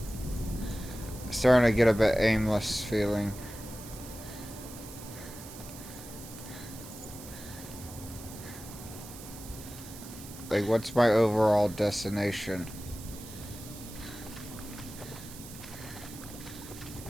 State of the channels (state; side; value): noise; right; hiss, 14 dB below the sound